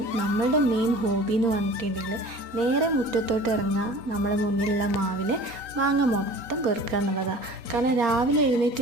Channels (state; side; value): late; left; 3.9 ms